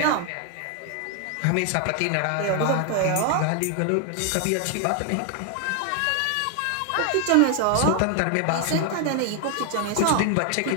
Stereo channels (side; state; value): both; different; correlation 0.00